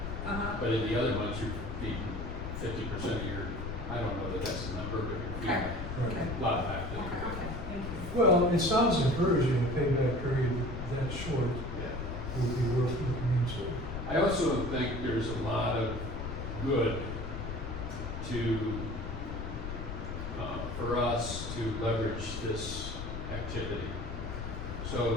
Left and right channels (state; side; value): noise; left; rumble, 6 dB below the sound